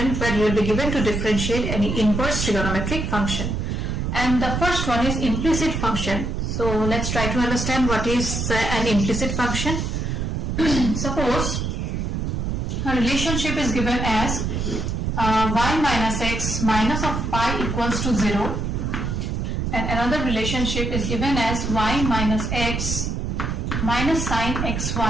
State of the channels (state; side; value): noise; right; rumble, 2 dB below the sound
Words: where you will be given to differentiate any inverse trigonometric function. And the first one is implicit function. So let's try to understand what is an implicit function. Suppose a relationship is given as y minus x minus of pi equals to 0, and another relationship is given as y minus x minus sine